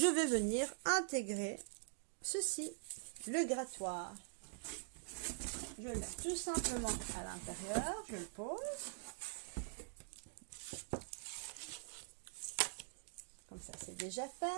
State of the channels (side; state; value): left; silent; digital silence